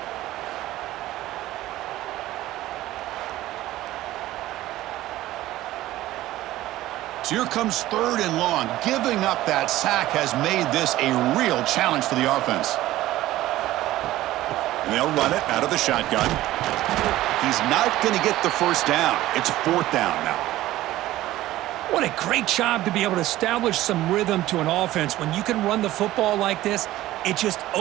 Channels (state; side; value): quieter; left; 15.6 dB